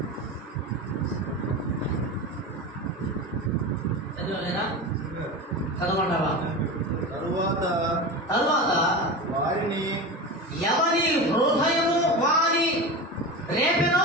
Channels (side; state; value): both; normal; correlation 0.26